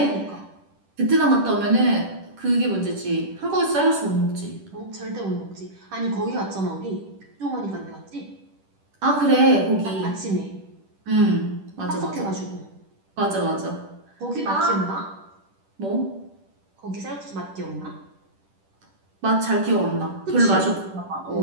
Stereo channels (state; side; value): late; left; 10 ms